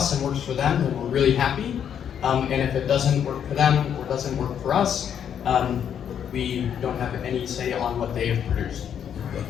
and works for them, then we're really happy. And if it doesn't work for them or doesn't work for us, we don't have any say on what they have produced.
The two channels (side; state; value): right; quieter; 8.7 dB